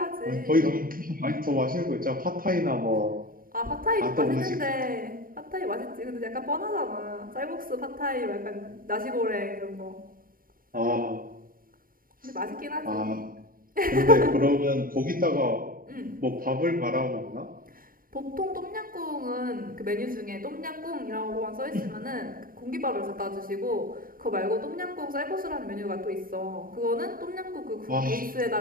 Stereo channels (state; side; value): late; left; 0.41 ms